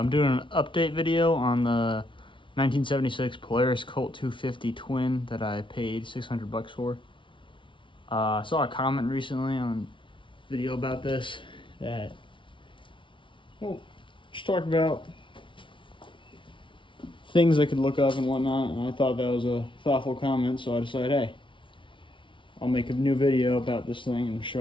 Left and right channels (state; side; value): late; right; 0.24 ms